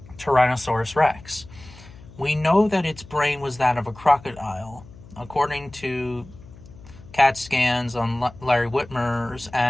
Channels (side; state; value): left; noise; hum, 20 dB below the sound